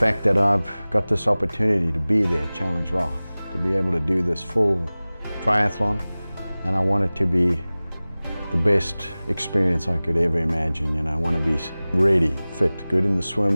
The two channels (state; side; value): inverted; both; correlation -0.99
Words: that I've got this opportunity to be there at Challenge Roth, to be able to do this full triathlon, and I want it to be the best experience I could ever imagine. You know, I want to be ready, fit, good in the